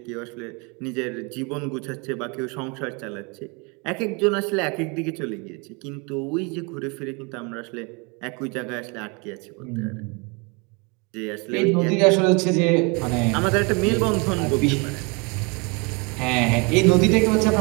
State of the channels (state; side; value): quieter; left; 31.0 dB